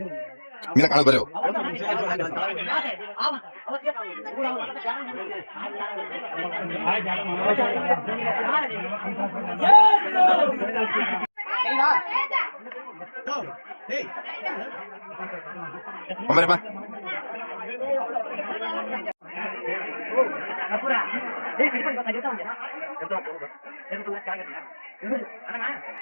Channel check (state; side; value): inverted; both; correlation -1.00